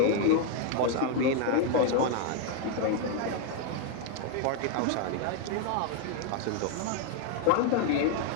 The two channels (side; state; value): both; different; correlation 0.01